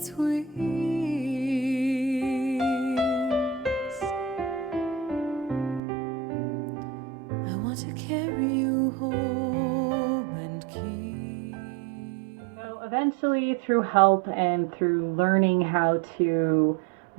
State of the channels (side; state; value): left; drops out; at 5.8 s